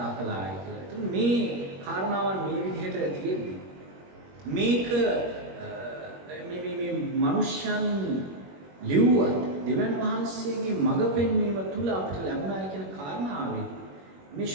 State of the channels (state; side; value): late; left; 21 ms